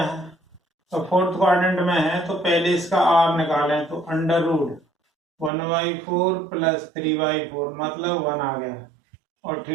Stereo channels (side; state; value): left; drops out; at 5.5 s